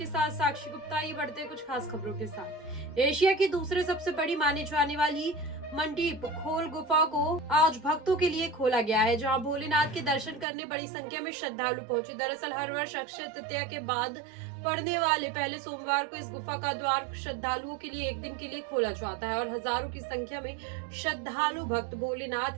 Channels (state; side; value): drops out; left; at 10.5 s